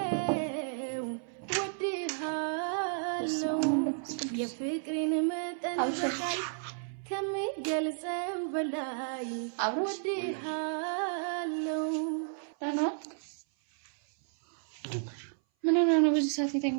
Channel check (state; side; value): silent; left; 56 dB below the other